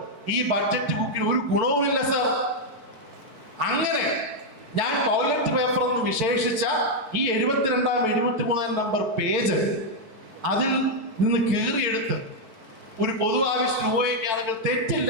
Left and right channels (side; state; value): left; late; 4.5 ms